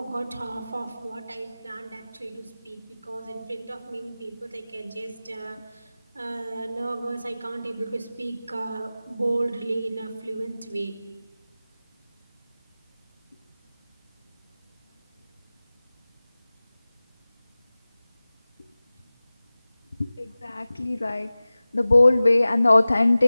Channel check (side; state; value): both; inverted; correlation -0.97